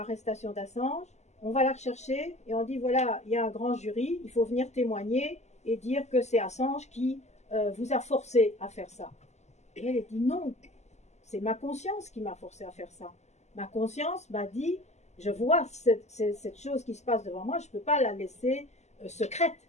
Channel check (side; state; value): right; late; 0.33 ms